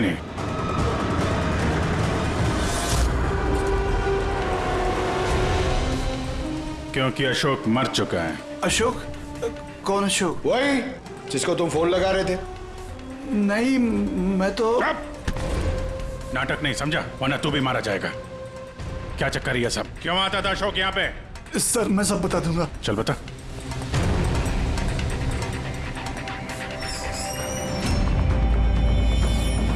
क्योंकि अशोक मर चुका है। अशोक? कौन अशोक? वही जिसको तुम फोन लगा रहे थे। नहीं, मैं तो नाटक नहीं समझा, वरना तू भी मारा जाएगा। क्या चक्कर है ये सब? क्यों आता था अशोक यहाँ पे? सर मैं सब बता दूंगा। चल बता।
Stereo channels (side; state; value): both; identical; correlation 1.00